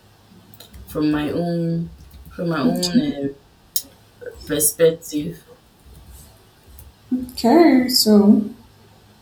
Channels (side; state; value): both; identical; correlation 1.00